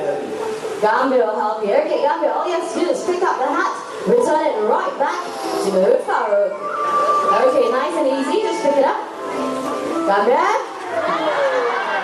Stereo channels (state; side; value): identical; both; correlation 1.00